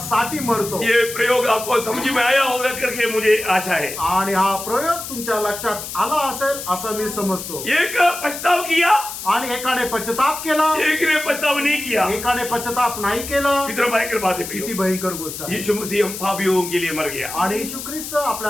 मरतो। ये प्रयोग आपको समझ में आया होगा करके मुझे आशा है। आणि हा प्रयोग तुमच्या लक्षात आला असेल असं मी समजतो। एक पछताव किया आणि एकाने पश्चाताप केला, एक ने पछताव नहीं किया। एकाने पश्चाताप नाही केला। कितना भयंकर बात है। किती भयंकर गोष्ट आहे। यीशु मसीह हम पापियों के लिए मर गया। आणि येशू ख्रिस्त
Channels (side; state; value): left; noise; hiss, 8 dB below the sound